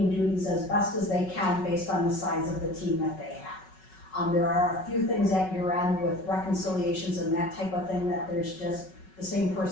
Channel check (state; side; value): late; right; 5.4 ms